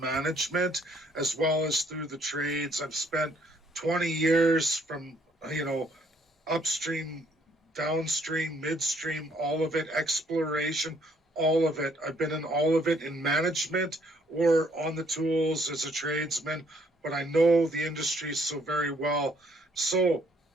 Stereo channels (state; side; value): normal; both; correlation 0.66